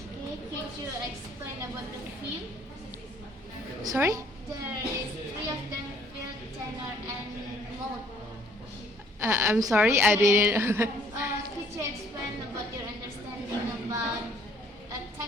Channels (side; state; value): both; normal; correlation 0.60